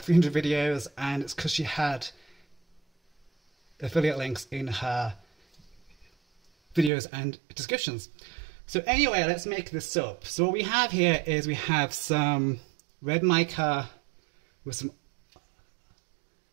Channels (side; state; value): left; drops out; at 6.9 s